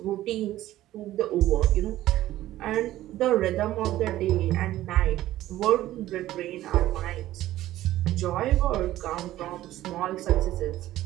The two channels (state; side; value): quieter; left; 14.6 dB